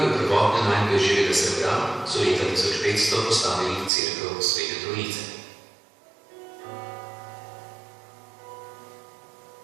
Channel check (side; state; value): left; drops out; at 3.9 s